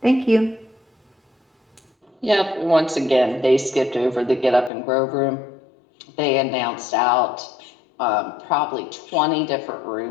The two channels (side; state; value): right; drops out; at 4.7 s